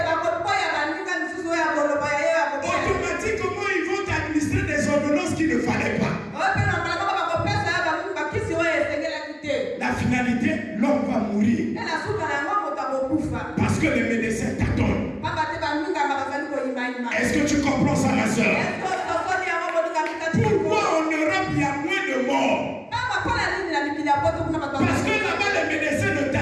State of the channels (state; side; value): identical; both; correlation 1.00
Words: bakoboya baninga misusu oyo akoloba ya ye bakoboya. Automatiquement, ils vont administrer des ordonnances qu'il ne fallait pas. Oyo mpe na mbala moko bakopesa ya bakisi oyo esengelaki te. La finalité, l'homme va mourir. Parce que les médecins t'attendent. Est-ce que tu comprends ça, ma soeur? Pourquoi en Europe il y a moins de morts? Parce que là-bas les médecins ne